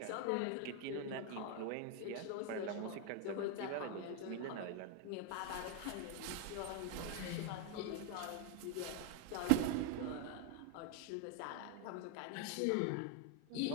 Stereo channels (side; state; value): both; different; correlation 0.00